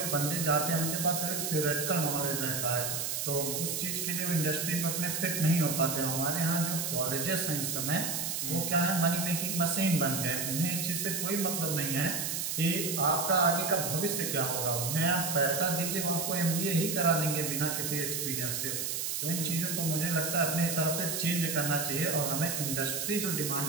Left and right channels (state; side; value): noise; right; hiss, 1 dB below the sound